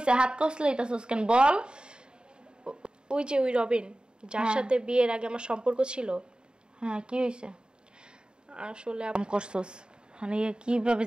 হাত কষলাইতেছিস কেন বল? ওই যে ওই রবিন যার সাথে বিয়ের আগে আমার সম্পর্ক ছিল। হ্যাঁ, কি হয়েছে? আসলে করছস মানে কিভাবে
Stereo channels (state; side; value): late; left; 0.049 ms